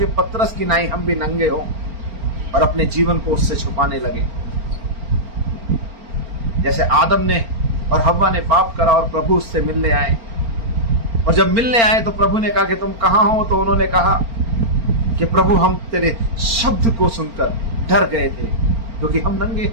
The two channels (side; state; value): left; late; 4.4 ms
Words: पतरस की नाई हम भी नंगे हो और अपने जीवन को उससे छुपाने लगे। जैसे आदम ने और हव्वा ने पाप करा और प्रभु उससे मिलने आए, और जब मिलने आए तो प्रभु ने कहा कि तुम कहां हो, तो उन्होंने कहा कि प्रभु हम तेरे शब्द को सुनकर डर गए थे क्योंकि हम नंगे